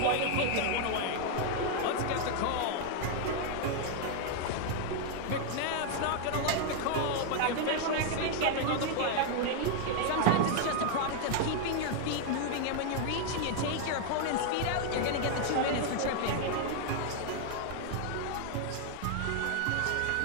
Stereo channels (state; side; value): different; both; correlation 0.00